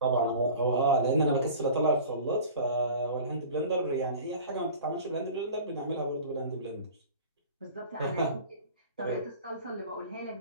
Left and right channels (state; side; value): inverted; both; correlation -0.39